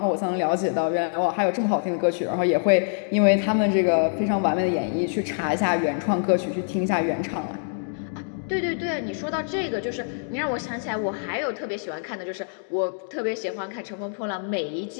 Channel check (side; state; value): right; silent; digital silence